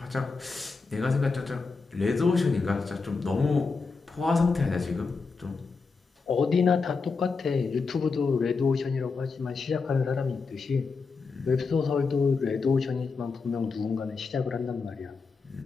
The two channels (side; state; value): right; quieter; 4.6 dB